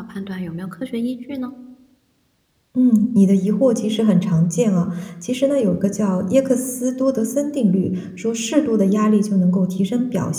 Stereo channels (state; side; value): identical; both; correlation 1.00